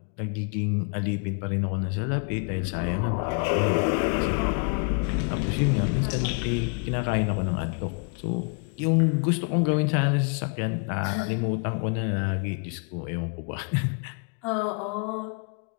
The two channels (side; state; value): right; quieter; 36.7 dB